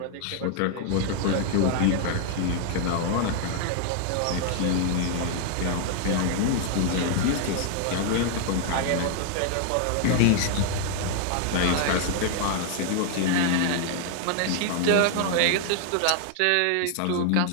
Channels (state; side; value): different; both; correlation 0.00